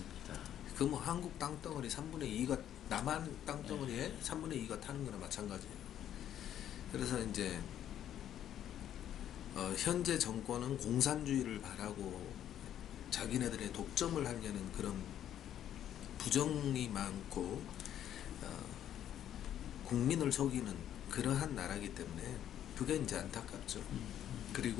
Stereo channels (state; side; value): quieter; right; 10.7 dB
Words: 그 뭐 한국 땅덩어리 3분의 2가 남한 땅덩어리에 3분의 2가 타는 거나 마찬가지예요. 그래서 이제 현재 정권은 공산주의를 바라고 자기네들의 독점을 하려는 그런 부정이 많고 국민을 속이는 그러한 나라이기 때문에 그게 이제 안타깝죠.